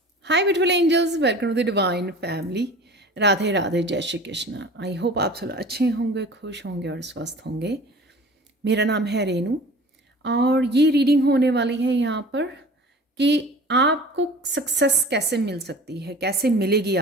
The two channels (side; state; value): both; normal; correlation 0.42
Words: Hi beautiful angels, welcome to the divine family. Radhe Radhe, जय Shri Krishna. I hope आप सब अच्छे होंगे, खुश होंगे और स्वस्थ होंगे। मेरा नाम है रेनू और ये रीडिंग होने वाली है यहाँ पर कि आपको सक्सेस कैसे मिल सकती है, कैसे मिलेगी